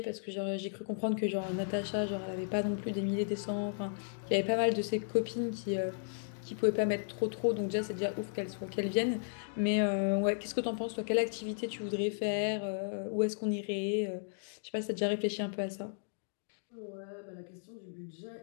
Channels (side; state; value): right; silent; digital silence